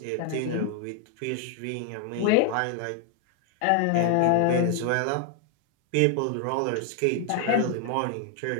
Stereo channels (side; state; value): both; different; correlation 0.00